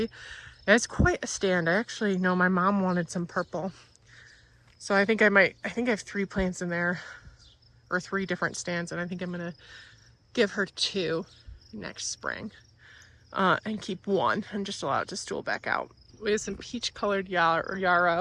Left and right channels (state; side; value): identical; both; correlation 1.00